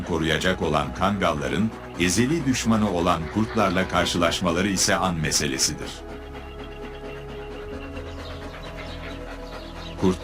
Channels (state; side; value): identical; both; correlation 1.00